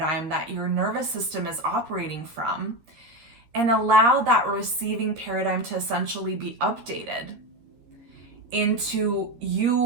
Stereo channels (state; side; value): late; left; 13 ms